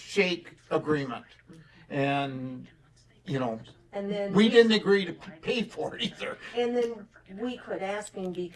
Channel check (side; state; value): both; identical; correlation 1.00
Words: agreement. And, And then we didn't agree to pay for it either. And then we quit asking